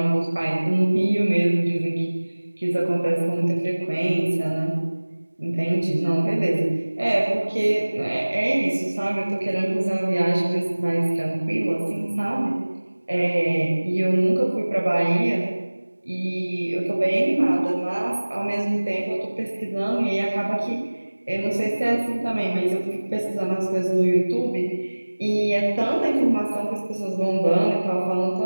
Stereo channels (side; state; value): both; inverted; correlation -1.00